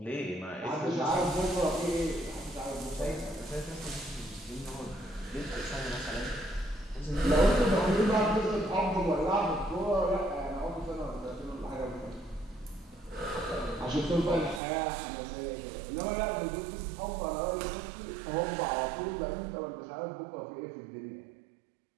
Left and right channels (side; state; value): left; drops out; at 14.6 s